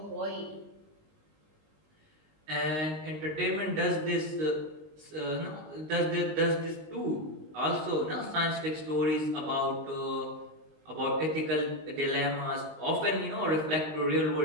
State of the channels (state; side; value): late; left; 19 ms